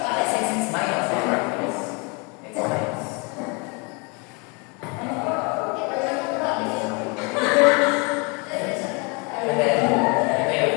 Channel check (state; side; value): quieter; right; 31.4 dB